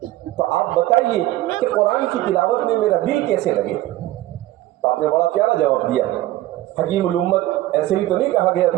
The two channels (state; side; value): quieter; left; 16.0 dB